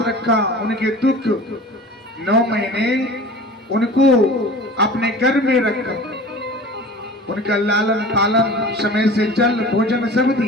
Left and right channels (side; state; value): both; normal; correlation 0.39